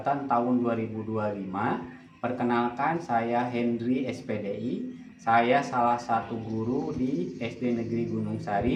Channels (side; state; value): both; identical; correlation 1.00